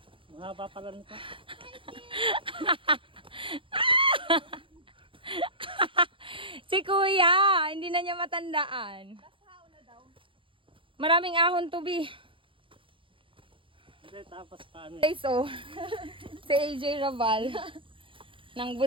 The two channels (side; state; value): left; late; 0.25 ms